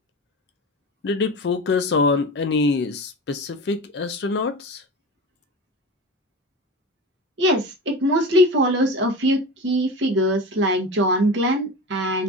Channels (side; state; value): both; normal; correlation 0.29